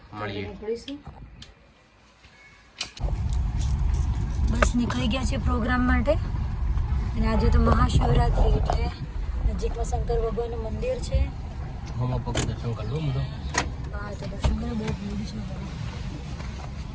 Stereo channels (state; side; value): identical; both; correlation 1.00